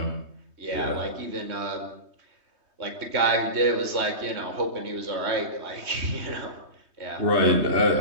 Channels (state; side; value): late; left; 3.2 ms